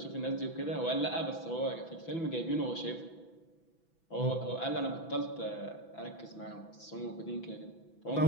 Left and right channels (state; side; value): late; right; 6.0 ms